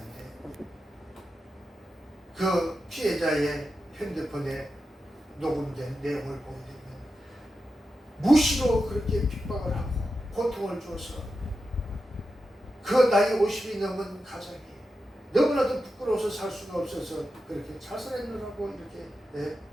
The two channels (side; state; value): both; normal; correlation 0.90